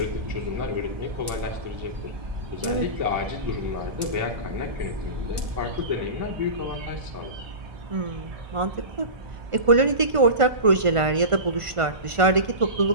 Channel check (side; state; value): left; late; 1.5 ms